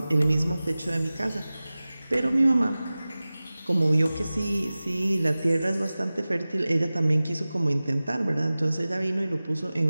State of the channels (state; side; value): inverted; both; correlation -0.97